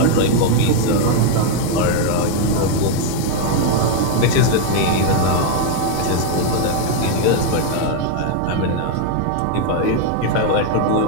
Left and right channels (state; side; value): different; both; correlation 0.00